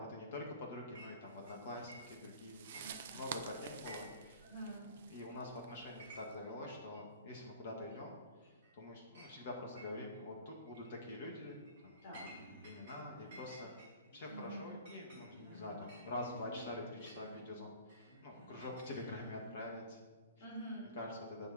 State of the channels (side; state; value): both; inverted; correlation -0.44